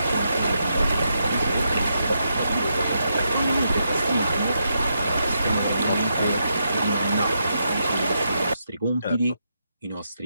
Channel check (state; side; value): inverted; both; correlation -0.82